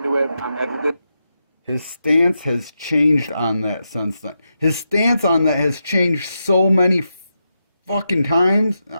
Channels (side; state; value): both; inverted; correlation -0.86